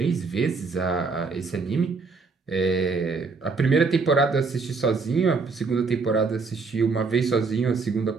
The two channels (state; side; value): quieter; left; 4.4 dB